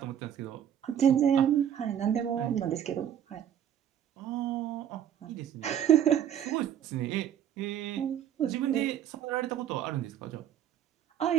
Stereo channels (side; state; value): left; quieter; 9.9 dB